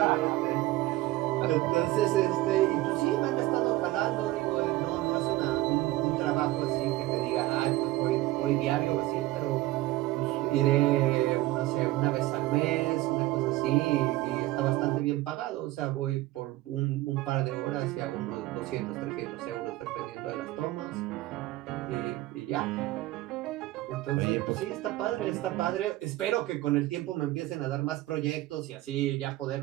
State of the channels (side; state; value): left; quieter; 17.6 dB